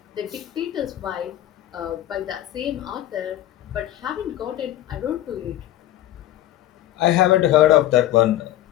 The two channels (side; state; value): right; quieter; 13.5 dB